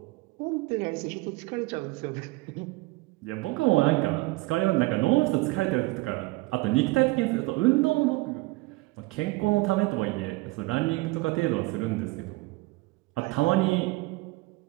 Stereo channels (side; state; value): left; quieter; 22.7 dB